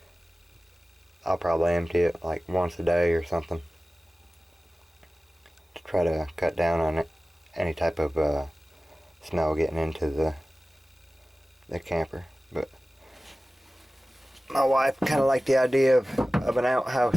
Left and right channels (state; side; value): normal; both; correlation 0.96